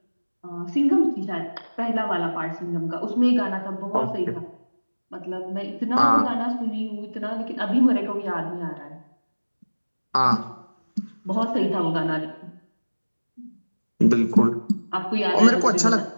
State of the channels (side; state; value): both; inverted; correlation -1.00